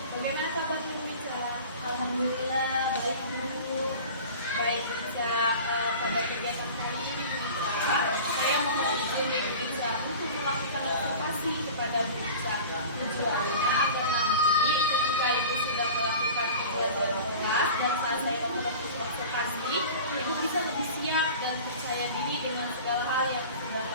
Bagaimana kabar Bu Ica? Alhamdulillah baik Bu. Baik Ica, pada kegiatan kali ini Bu Ica, saya mohon izin dari Bu Ica untuk melakukan observasi kepada Bu Ica. Tujuannya agar nanti ketika Ibu sudah melakukan pembelajaran kelas dan saat saya melakukan observasi, Ibu bisa lebih siap dan percaya diri dengan segala hal yang sudah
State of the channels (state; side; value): inverted; both; correlation -0.38